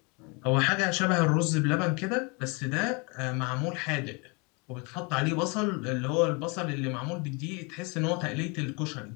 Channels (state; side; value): quieter; right; 30.6 dB